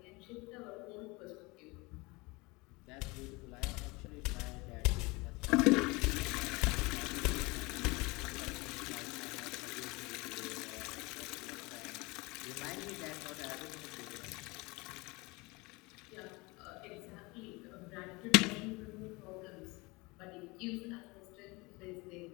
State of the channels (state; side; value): quieter; right; 24.8 dB